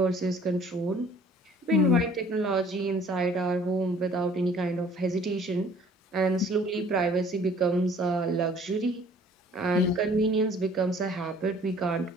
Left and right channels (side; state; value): both; normal; correlation 0.54